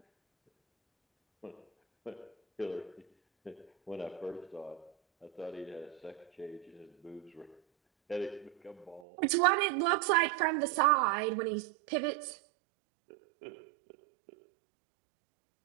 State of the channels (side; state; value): left; drops out; at 9.0 s